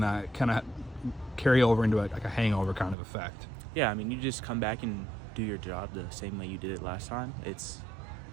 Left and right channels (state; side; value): drops out; left; at 3.0 s